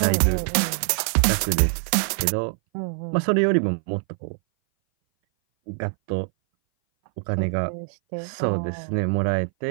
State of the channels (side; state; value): left; silent; 59 dB below the other